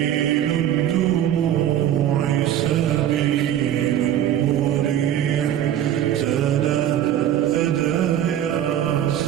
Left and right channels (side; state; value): left; quieter; 11.0 dB